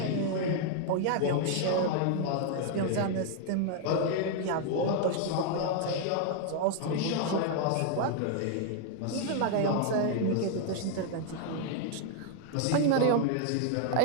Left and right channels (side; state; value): both; different; correlation 0.00